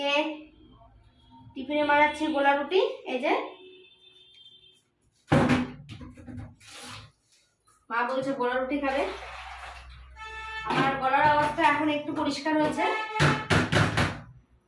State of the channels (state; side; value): identical; both; correlation 1.00